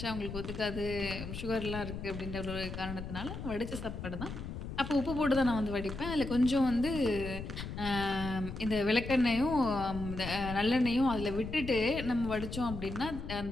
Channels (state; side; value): noise; left; rumble, 8 dB below the sound